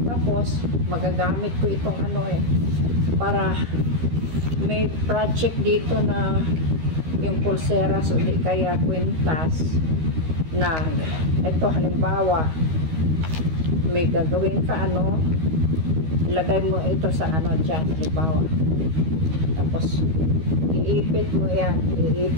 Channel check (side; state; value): left; late; 13 ms